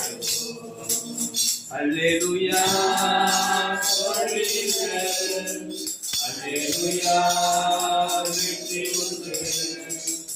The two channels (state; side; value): identical; both; correlation 1.00